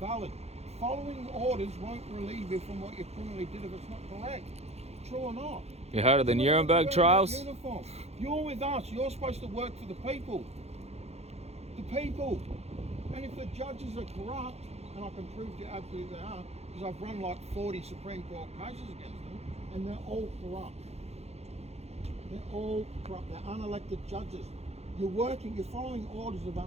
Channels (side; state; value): left; late; 0.31 ms